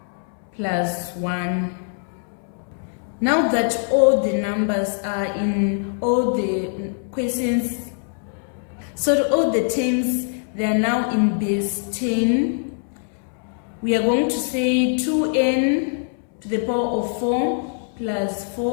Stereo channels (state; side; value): silent; right; 64 dB below the other